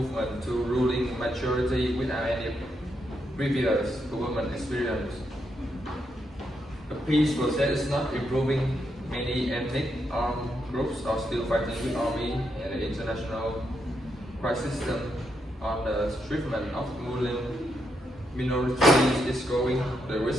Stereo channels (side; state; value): both; normal; correlation 0.81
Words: to ruling majority without any previous government experience. The peace process is not improving. Many ethnic armed groups are still fighting with army, and the international crisis system on the treatment of Muslim minorities is growing. The